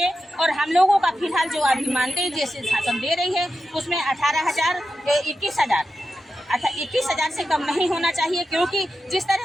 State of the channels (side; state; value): both; normal; correlation 0.91